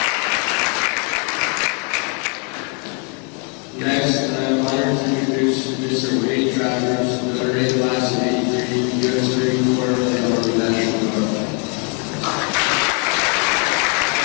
Next, I'm honored to introduce Mr. Wade Travers, Military Class of 83, U.S. Marine Corps, and Army National Guard.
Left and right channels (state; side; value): quieter; right; 37.4 dB